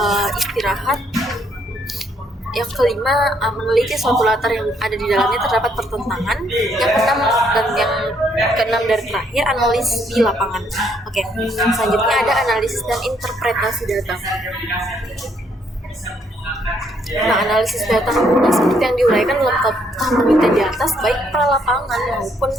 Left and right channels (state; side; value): normal; both; correlation 0.70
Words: istirahat. Yang kelima meneliti suatu latar yang ada di dalamnya terdapat pertentangan. Yang keenam dari terakhir analisis di lapangan. Oke, selanjutnya ada analisis dan interpretasi data. Nah, analisis data seperti yang diuraikan dalam tahap penelitian di atas, baik pra-lapangan maupun